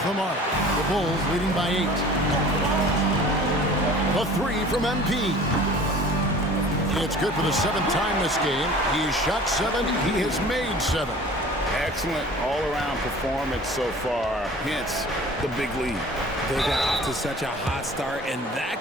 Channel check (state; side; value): normal; both; correlation 0.45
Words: the mark. The Bulls leading by 8. A 3 from MP. It's good for the 7th time this game. He has shot 7. He has made 7. Excellent all-around performance so far, hence the big lead. They got off to such a hot start, and that